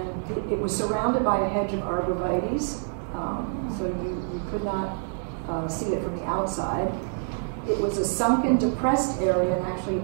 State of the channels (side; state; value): left; silent; digital silence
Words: it was surrounded by a hedge of arborvitaes, so you could not see it from the outside. It was a sunken, depressed area, and actually you